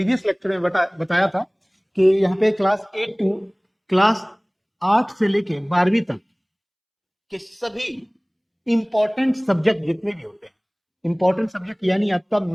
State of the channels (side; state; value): both; identical; correlation 1.00